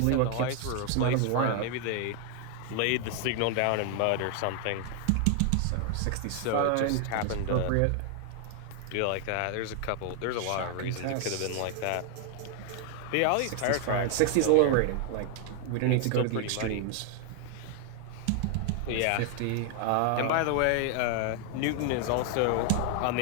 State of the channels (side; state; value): both; different; correlation 0.00